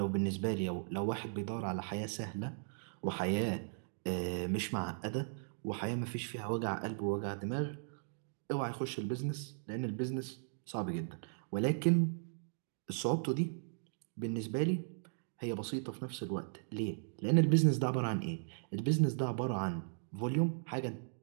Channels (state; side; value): silent; left; digital silence